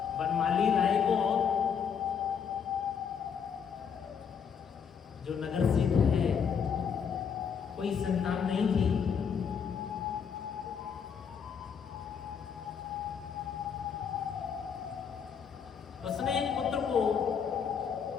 बनमाली राय को जो नगर सेठ है, कोई संतान नहीं थी। उसने एक पुत्र को,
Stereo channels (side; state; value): right; quieter; 7.1 dB